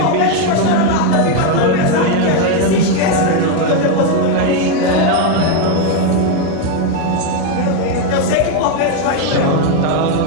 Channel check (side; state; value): both; different; correlation 0.01